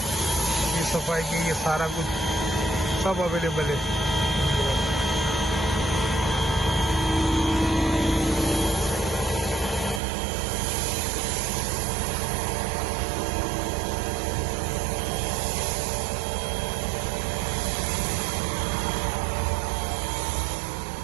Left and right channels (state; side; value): drops out; left; at 10.0 s